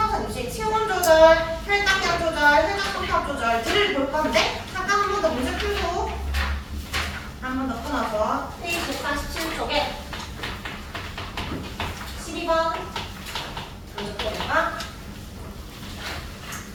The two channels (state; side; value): identical; both; correlation 1.00